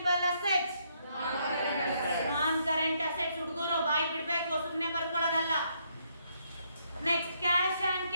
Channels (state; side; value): inverted; both; correlation -0.73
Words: assets. Non-current assets ಹುಡುಗರು ಬಾಯಿ ಬಿಡಬೇಕು, ಸುಮ್ಮನೆ ಬರ್ಕೊಳ್ಳೋದಲ್ಲ. Next, cash and